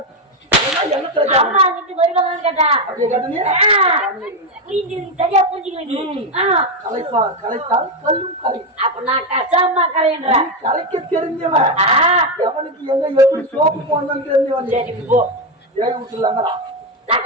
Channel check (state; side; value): normal; both; correlation 0.08